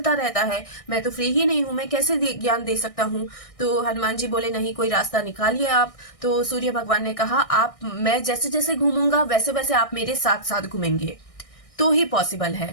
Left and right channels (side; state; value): right; late; 1.6 ms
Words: रहता है, मैं तो फ्री ही नहीं हूँ, मैं कैसे ज्ञान दे सकता हूँ। तो हनुमान जी बोले, नहीं, कोई रास्ता निकालिए आप। तो सूर्य भगवान ने कहा, मैं जैसे जैसे घूमूंगा वैसे वैसे आप मेरे साथ साथ घूमेंगे तो ही पॉसिबल है।